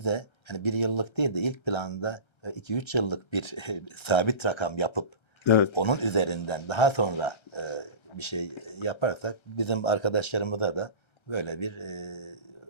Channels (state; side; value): late; right; 1.3 ms